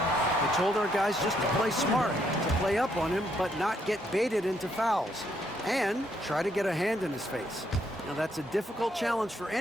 told our guys just to play smart, to play up on him, but not get baited into fouls, and try to get a hand in his face. Now, that's a difficult challenge for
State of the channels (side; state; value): both; normal; correlation 0.73